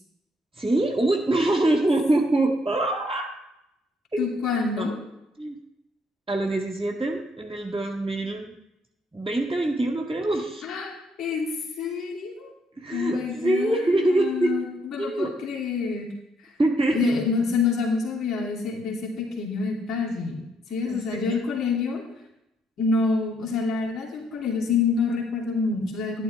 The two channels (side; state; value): both; normal; correlation 0.71